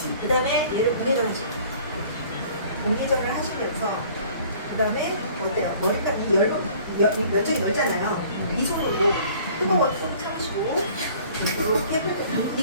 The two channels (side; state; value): both; inverted; correlation -0.51